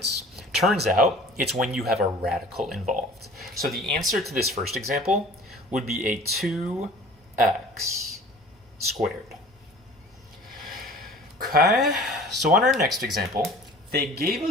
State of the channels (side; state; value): both; normal; correlation 0.45